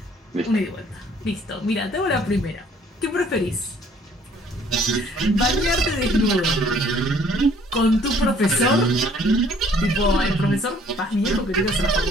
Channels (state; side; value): normal; both; correlation 0.58